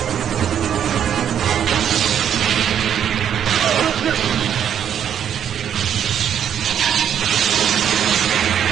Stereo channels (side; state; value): left; quieter; 9.1 dB